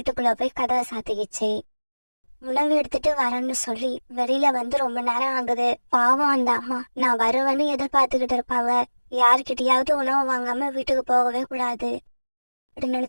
போய் கதவை சாத்திக்கிச்சு. உணவு எடுத்துட்டு வரேன்னு சொல்லி வெளியில வந்து ரொம்ப நேரம் ஆகுது. பாவம் அந்த அம்மா, நான் வருவேன்னு எதிர்பார்த்துக்கிட்டு இருப்பாங்க. யாருக்கிட்டையாவது உணவு வாங்காம வீட்டுக்கு போகவே கூடாது அப்படி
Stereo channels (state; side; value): inverted; both; correlation -1.00